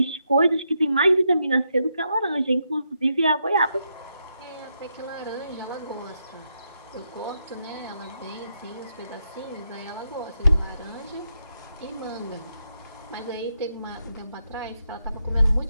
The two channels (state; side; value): inverted; both; correlation -0.81